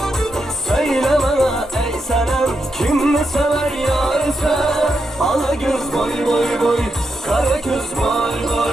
Söyle bana ey senem kim mi sever yarısı? Ala göz boy boy boy, kara göz boy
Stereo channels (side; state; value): both; normal; correlation 0.84